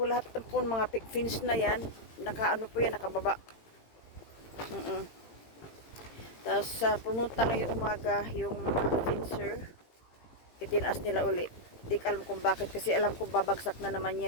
lahat po mga fins na yan. Nakababa. Tapos pumunta ngayong umaga yung mga finser. Itinaas nila uli. Di ko alam kung bakit kasi alam kong babagsak na naman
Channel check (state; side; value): late; right; 18 ms